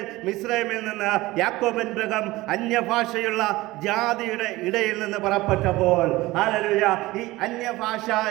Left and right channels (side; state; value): left; quieter; 19.1 dB